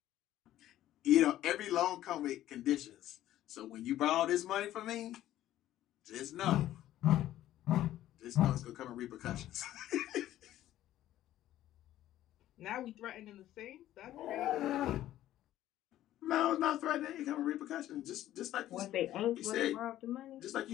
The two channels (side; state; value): right; quieter; 13.4 dB